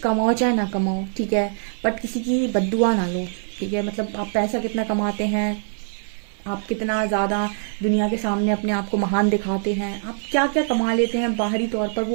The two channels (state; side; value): silent; left; digital silence